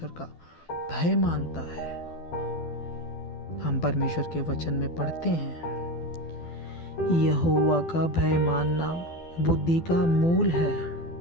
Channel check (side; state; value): right; late; 12 ms